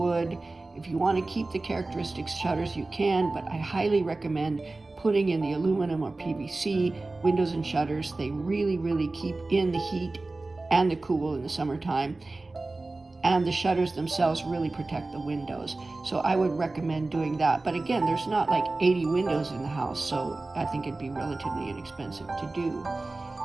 If you want to keep the characteristic shutters, you can, but I highly recommend putting in the aluminum or PVC windows and shutters. They really keep in the heat and the cool in the summertime. And the shutters themselves really protect the windows. So I would recommend doing that. But again, there's not like 80 windows in the house, so I think it'd be relatively inexpensive to do.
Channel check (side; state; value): left; quieter; 3.2 dB